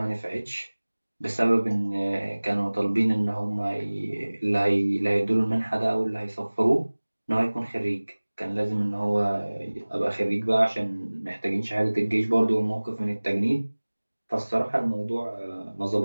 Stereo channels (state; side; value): inverted; both; correlation -1.00